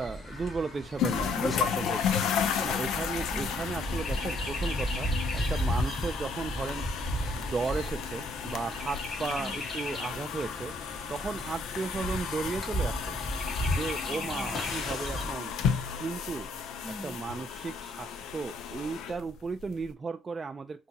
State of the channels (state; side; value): normal; both; correlation 0.67